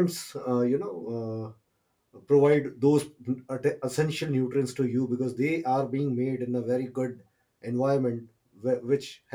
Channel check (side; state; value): both; identical; correlation 1.00